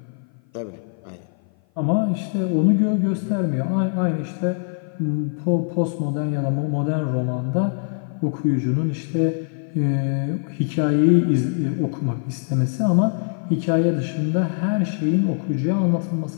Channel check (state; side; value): silent; right; 56 dB below the other